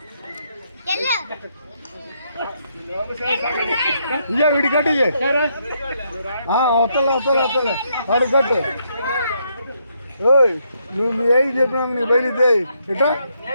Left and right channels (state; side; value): inverted; both; correlation -0.75